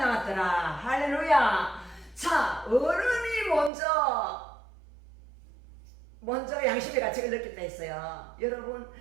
할렐루야. 자, 어른이 먼저 양심의 가책을 느꼈다 했어요. 여러분,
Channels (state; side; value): drops out; left; at 3.7 s